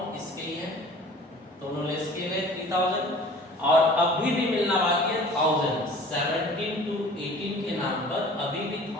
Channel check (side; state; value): both; normal; correlation 0.46